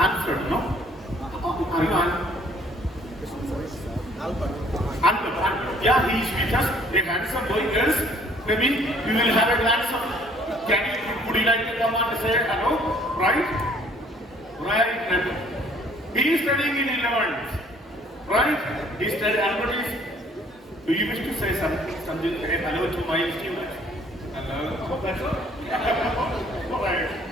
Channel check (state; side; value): normal; both; correlation 0.59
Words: no? Are you on? Albert. Yeah, he is with us. A handsome boy, girls. Maybe we will have a glance of, would you like to come on and say hello? Right? Right. He is studying in 11th. Right? He studied Albert is. Do you wish to say something hello to my students? Hello? Oh, that's all?